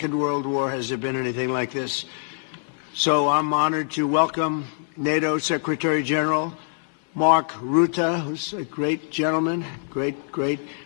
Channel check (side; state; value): right; silent; 60 dB below the other